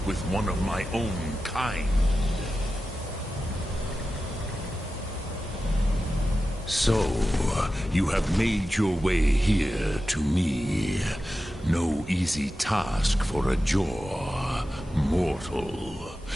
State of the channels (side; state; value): both; normal; correlation 0.93